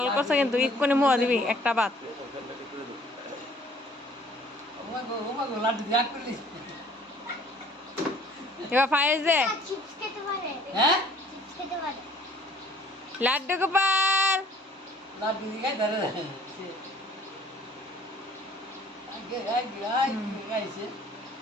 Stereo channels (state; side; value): normal; both; correlation 0.55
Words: করছে কিন্তু ইকুনে মুহ দিবি একটা বাত লাড্ডু দিয়া করলি এবার ফাইজে হ্যাঁ লাড্ডু গোপাল লাড্ডু দিয়া ধরে আগে খাইছে